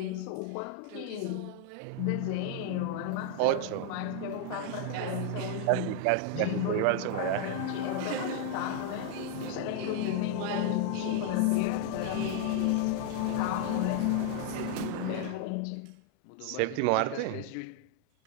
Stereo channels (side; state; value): both; different; correlation 0.00